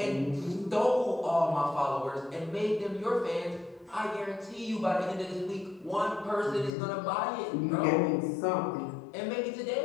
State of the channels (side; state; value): right; drops out; at 6.8 s